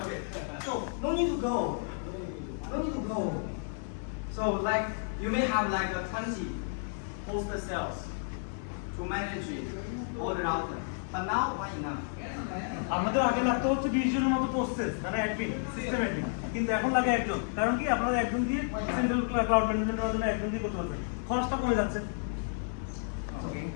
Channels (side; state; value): right; silent; digital silence